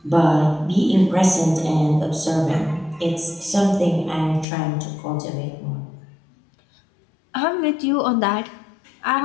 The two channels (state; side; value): drops out; right; at 4.5 s